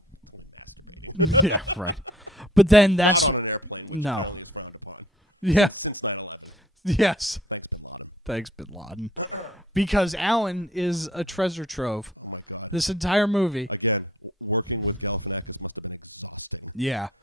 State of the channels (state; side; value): normal; both; correlation 0.54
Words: Yeah, right. But then no. Yeah. Yes. Thanks, Bin Laden. Because Alan is a treasure trove. This entire movie. Yeah.